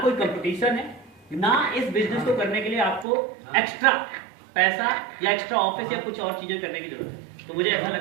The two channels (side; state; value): left; drops out; at 3.1 s